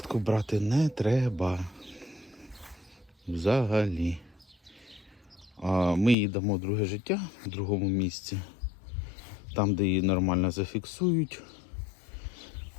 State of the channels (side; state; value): right; drops out; at 6.2 s